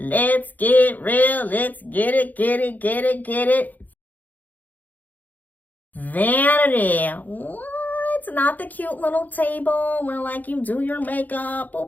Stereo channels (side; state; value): right; late; 0.082 ms